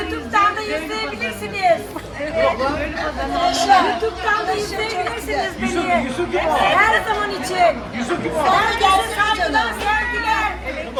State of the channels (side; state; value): both; identical; correlation 1.00